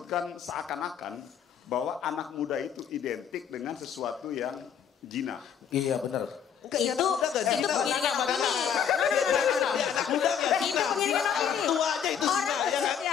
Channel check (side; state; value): right; quieter; 8.1 dB